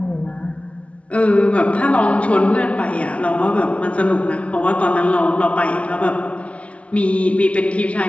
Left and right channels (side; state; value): right; late; 0.063 ms